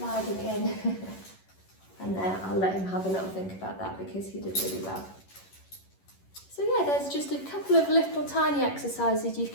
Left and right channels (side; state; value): right; late; 11 ms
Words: in, and there, I'll let him have a little think about that because he did really well. So yeah, there's just a couple of little tiny exercises you